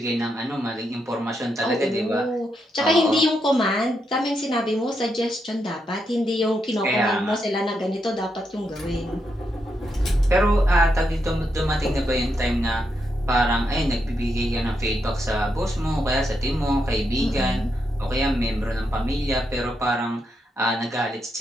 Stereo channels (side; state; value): both; normal; correlation 0.82